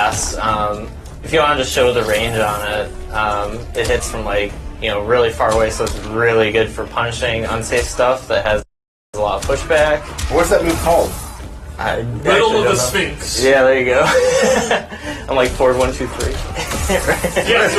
If you want to just show the range on it, it hits from really far away, so it's really good for punishing unsafe stuff that has a lot of pushback. What's that move called? Riddle of the Sphinx. Yeah, there you go. I'm like forward 1, 2, 3. Yeah,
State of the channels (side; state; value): both; identical; correlation 1.00